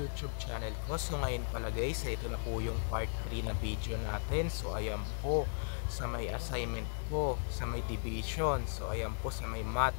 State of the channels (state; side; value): silent; right; digital silence